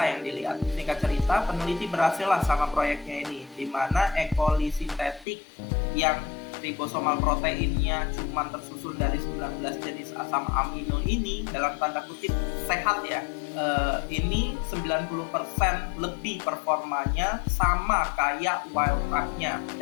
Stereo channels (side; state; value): right; drops out; at 5.2 s